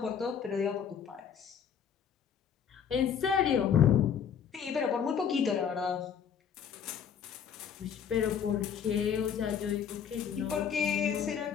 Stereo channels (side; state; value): right; quieter; 7.8 dB